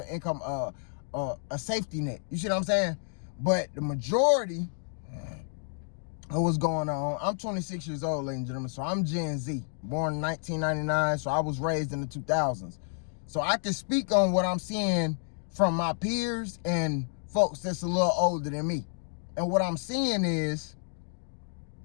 income, a safety net. You see what I'm saying? But the majority of what's going on, I'm 26 years old, ladies and gentlemen, so I'm Gen Z, born in 1999, so I was raised in the 2000s. So I can speak on what I'm seeing from my peers and folks that's a little older than me. And what I'm seeing is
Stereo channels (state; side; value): silent; right; digital silence